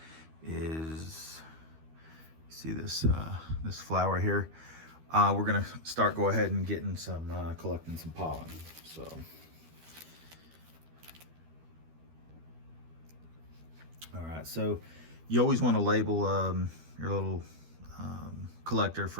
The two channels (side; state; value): left; late; 13 ms